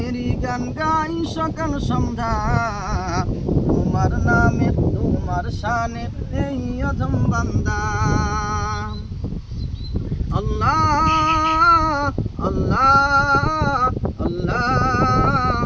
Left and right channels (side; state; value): both; identical; correlation 1.00